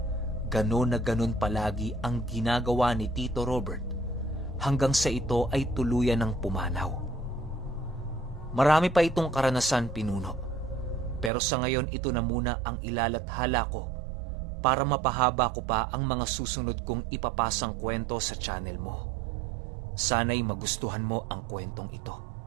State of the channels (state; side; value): drops out; left; at 11.3 s